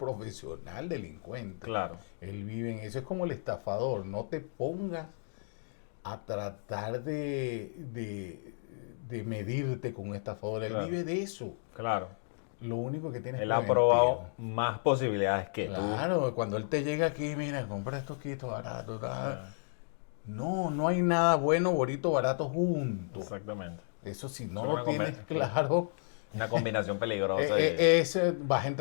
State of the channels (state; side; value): silent; right; digital silence